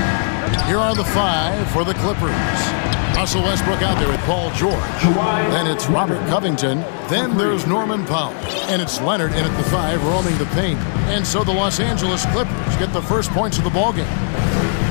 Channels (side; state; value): right; silent; digital silence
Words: Here are the 5 for the Clippers. Russell Westbrook out there with Paul George. Then it's Robert Covington. Then there's Norman Powell. And it's Leonard in at the 5 roaming the paint. And so the Los Angeles Clippers get the first points of the ballgame.